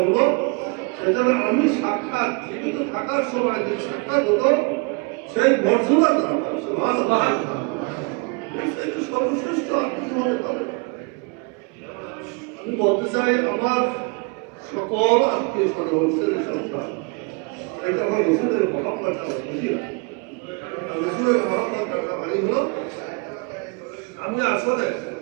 সেটা আমি সাক্ষাৎ জীবিত থাকার সময় যে সাক্ষাৎ হতো, সেই মর্যাদা তারা পায়। সুবহানাল্লাহ, এটা সর্বশ্রেষ্ঠ আর কিছু হতে পারে। আমি বলতে চাই, আমার সকল আত্মীয় স্বজন, সন্তান, এটা আমার রসুলের মহব্বত বুঝি না। আর রসুলের মহব্বত মানে হলো, আমি আসলে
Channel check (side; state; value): left; quieter; 31.2 dB